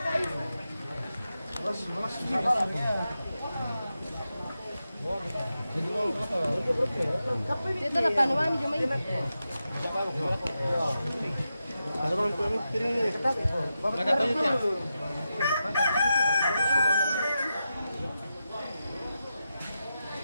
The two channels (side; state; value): both; inverted; correlation -0.89